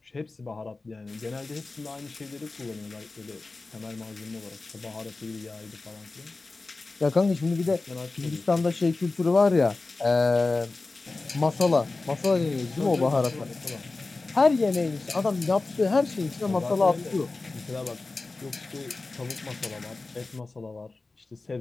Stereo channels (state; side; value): quieter; right; 3.5 dB